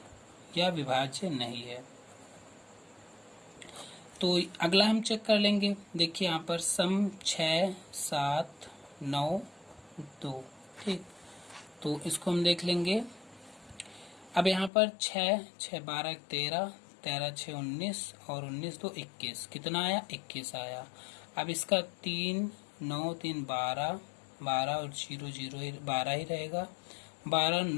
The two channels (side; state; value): right; drops out; at 14.7 s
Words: या विभाज्य नहीं है। तो अगला हम चेक कर लेंगे। देखिए यहाँ पर सम 6, 7, 9, 2, ठीक, तो इसको हम देख लेंगे। अब यहाँ पर 6, 6 12 13, 13 6 19 और 19 2 21, कितना आया? 21 आया। अब इसका 3 9 3 12, 12 और 0 0 12 ही रहेगा। 12